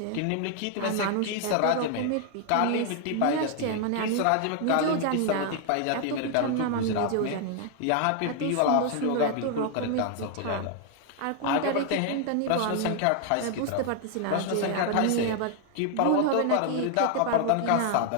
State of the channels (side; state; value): both; different; correlation 0.00